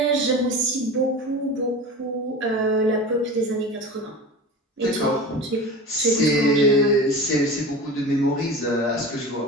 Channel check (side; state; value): both; normal; correlation 0.32